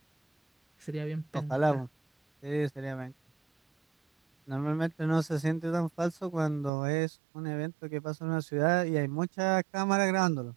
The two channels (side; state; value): left; drops out; at 6.7 s